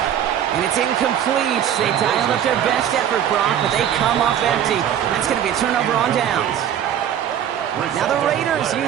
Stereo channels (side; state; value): left; quieter; 9.9 dB